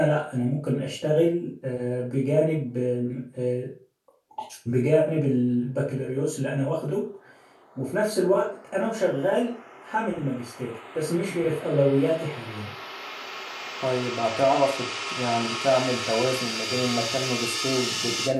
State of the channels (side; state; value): both; identical; correlation 1.00